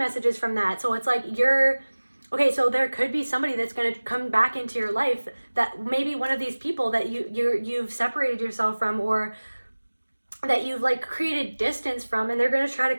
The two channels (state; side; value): inverted; both; correlation -1.00